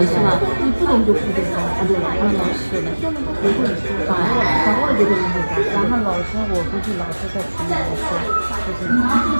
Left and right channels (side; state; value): both; inverted; correlation -1.00